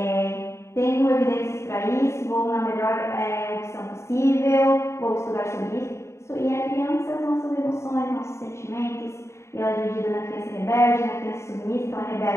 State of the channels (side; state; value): right; late; 0.13 ms